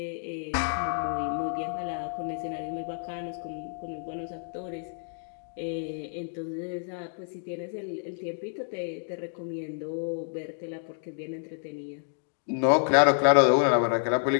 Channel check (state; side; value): silent; right; digital silence